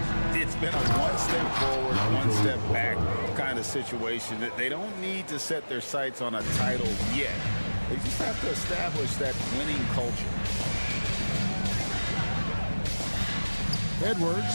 It's been a one step forward, one step back kind of situation. They don't need to set their sights on a title yet. They just have to establish that winning culture. Edwards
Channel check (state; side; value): inverted; both; correlation -1.00